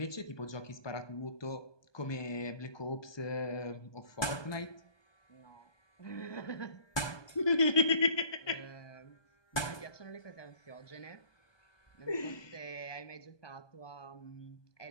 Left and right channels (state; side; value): late; right; 1.2 ms